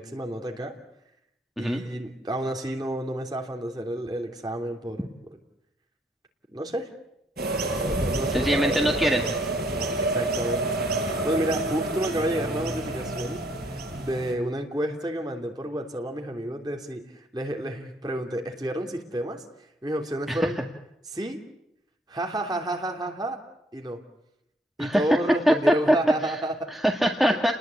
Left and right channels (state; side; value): normal; both; correlation 0.70